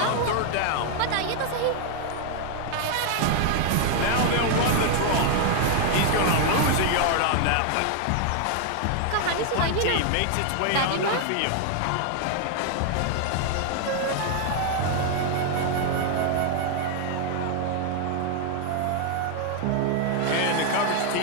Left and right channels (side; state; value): both; different; correlation 0.00